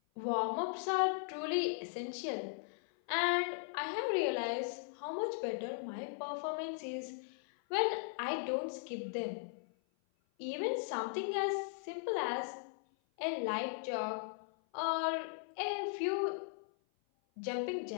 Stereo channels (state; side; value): silent; right; 52 dB below the other